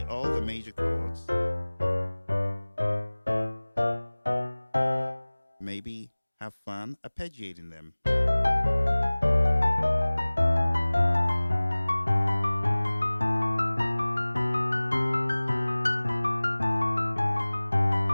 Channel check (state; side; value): inverted; both; correlation -1.00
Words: all the major chords. Maybe have fun arpeggiating them.